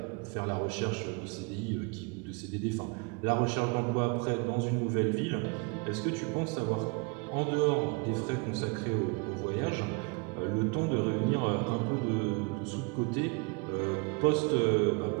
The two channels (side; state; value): left; quieter; 30.4 dB